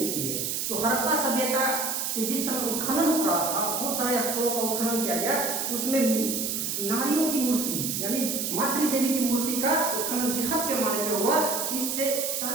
है? तो हड़प्पा सभ्यता कि जिस समय उत्खनन हो रहा था बहुत सारे स्थलों का उत्खनन किया गया तो उसमें नारियों की मूर्ति यानी मातृ देवी की मूर्ति का उत्खनन बृहद पैमाने पर हुआ। इससे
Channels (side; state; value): right; noise; hiss, 1 dB below the sound